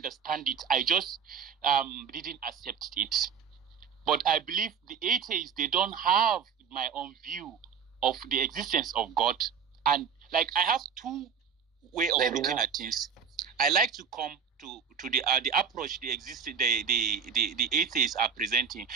it. I just didn't accept it. But I believe the atheists, they don't have my own view of the existence of God. And like I have two ways of looking at things. I like to come to the approach the atheists are presenting.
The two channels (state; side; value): quieter; left; 6.9 dB